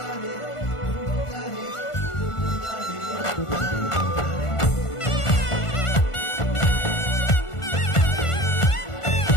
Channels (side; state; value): right; late; 1.5 ms